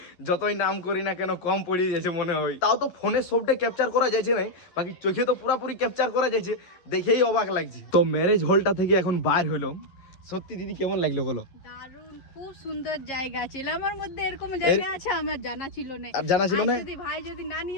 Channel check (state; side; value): late; right; 11 ms